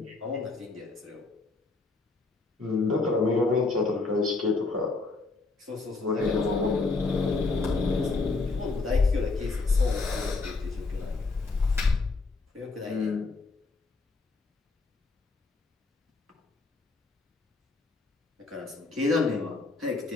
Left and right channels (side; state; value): right; quieter; 3.8 dB